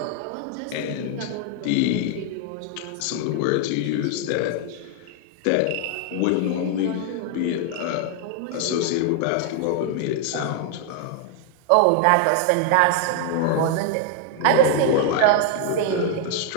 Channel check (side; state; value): both; different; correlation 0.00